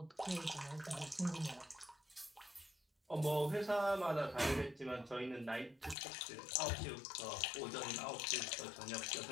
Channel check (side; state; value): right; drops out; at 6.0 s